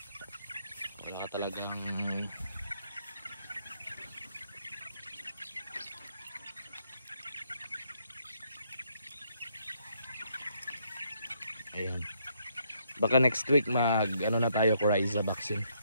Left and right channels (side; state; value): both; inverted; correlation -0.72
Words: Wala ka talagang ayan. Baka next week mag ano na tayo, Coryza vaccine.